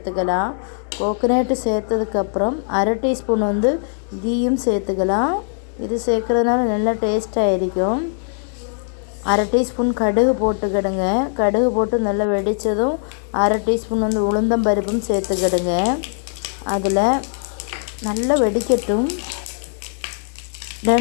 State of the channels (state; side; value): silent; right; digital silence